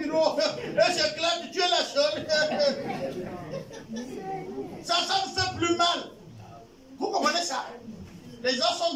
Et j'éclate, tu es la seule. Ça me fait plus mal. Vous comprenez ça? Les gens sont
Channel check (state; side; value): identical; both; correlation 1.00